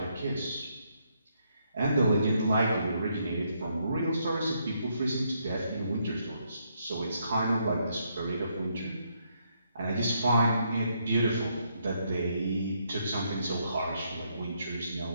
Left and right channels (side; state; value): both; inverted; correlation -0.75